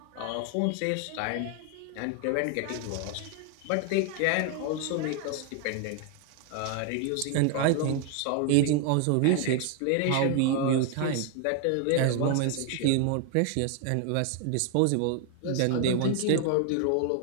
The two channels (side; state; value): both; different; correlation 0.00